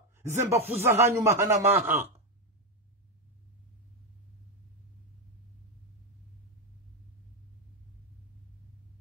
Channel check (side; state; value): both; normal; correlation 0.08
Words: Zembafuza hanyu mahana maha.